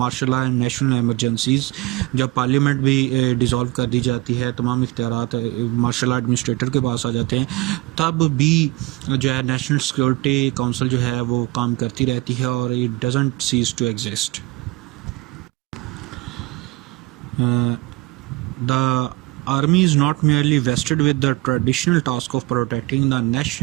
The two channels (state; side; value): quieter; left; 21.2 dB